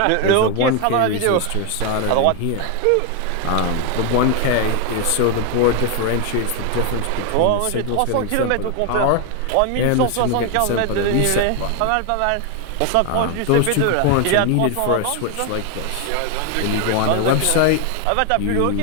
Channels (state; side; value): different; both; correlation 0.01